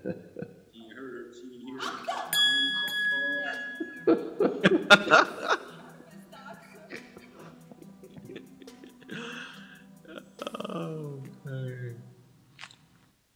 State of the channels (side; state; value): both; identical; correlation 1.00